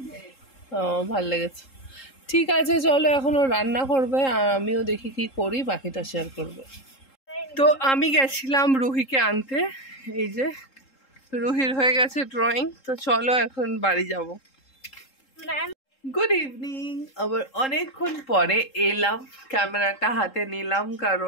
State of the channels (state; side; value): late; right; 3.7 ms